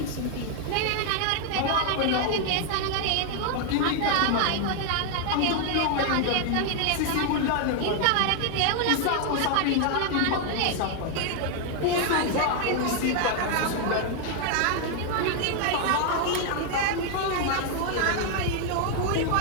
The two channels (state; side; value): different; both; correlation 0.00